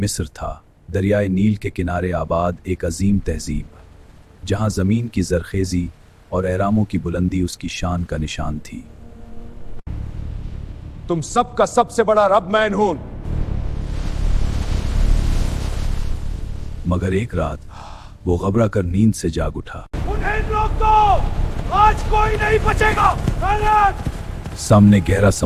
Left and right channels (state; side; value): identical; both; correlation 1.00